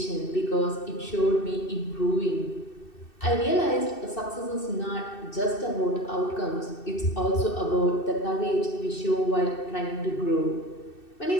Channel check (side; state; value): right; late; 2.6 ms